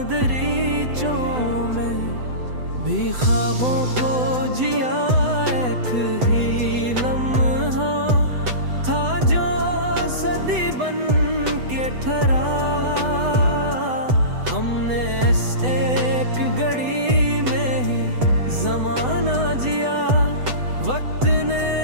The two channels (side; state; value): left; late; 8.0 ms